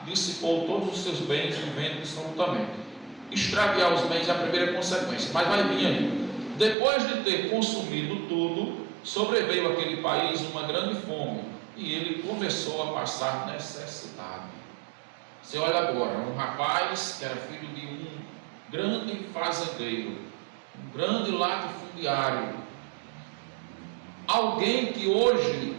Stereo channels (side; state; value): left; drops out; at 6.8 s